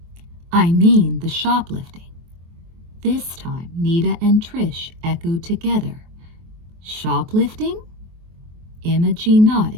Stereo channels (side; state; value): left; late; 23 ms